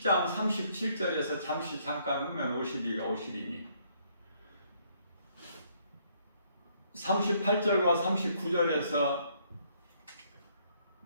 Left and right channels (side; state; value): both; inverted; correlation -0.68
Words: 37절에서 잠깐 후면 오시리가 오시리니 38절과 39절에서